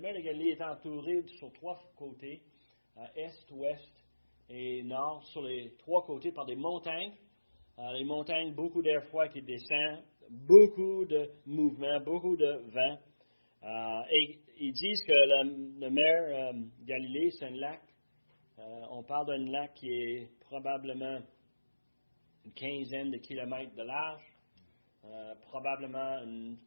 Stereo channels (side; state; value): both; inverted; correlation -1.00